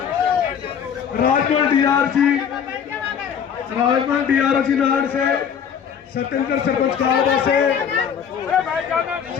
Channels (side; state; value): right; quieter; 7.8 dB